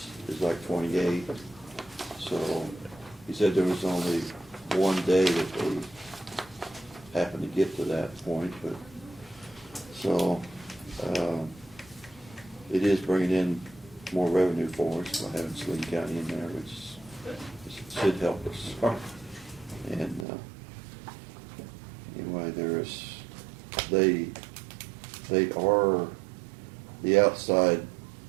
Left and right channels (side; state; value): left; drops out; at 20.2 s